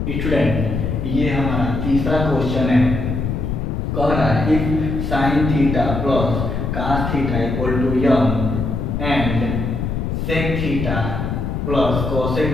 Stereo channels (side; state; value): left; noise; rumble, 2 dB below the sound